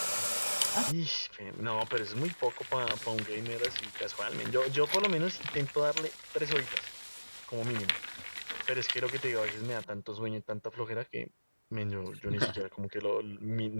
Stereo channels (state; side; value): inverted; both; correlation -1.00